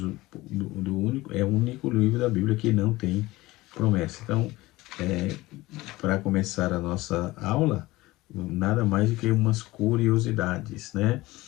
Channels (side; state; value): right; quieter; 19.3 dB